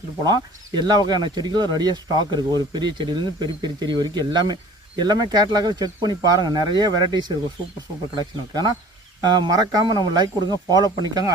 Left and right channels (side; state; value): both; normal; correlation 0.47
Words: போகலாம். எல்லா வகையான செடிகளும் ரெடியாக ஸ்டாக் இருக்குது. ஒரு பெரிய செடியிலேருந்து பெரிய பெரிய செடி வரைக்கும் எல்லாமே கேட்டலாக செக் பண்ணி பாருங்கள். நிறைய வெரைட்டிஸ் இருக்கும். சூப்பர் கலெக்ஷன் இருக்குது. ஆனால் மறக்காமல் நம்ம லைக் கொடுங்க, ஃபாலோ பண்ணிக்காங்க.